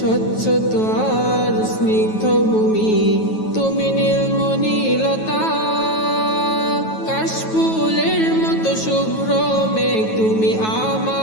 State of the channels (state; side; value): late; right; 9.3 ms